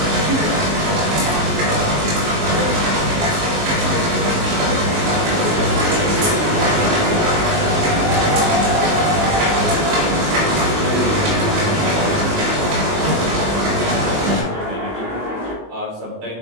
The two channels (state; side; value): late; left; 19 ms